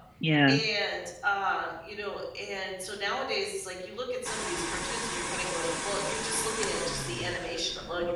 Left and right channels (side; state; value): both; identical; correlation 1.00